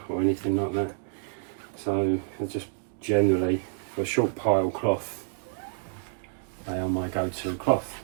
or anything like that, so they're just generally, for a short pile cloth, they are my go-to cloth.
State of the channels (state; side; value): silent; left; digital silence